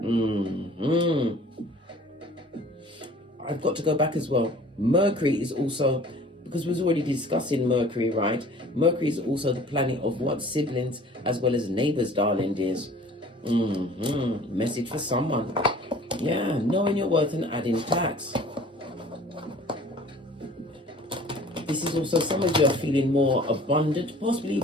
I've got to go back as well. Mercury is also, because we was already discussing Mercury, right? Mercury is also the planet of what? Siblings as well as neighbors, darling dears. Message for someone. Yeah, knowing your worth and adding tax. This is also, some of you are feeling more abundant, possibly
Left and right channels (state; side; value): normal; both; correlation 0.48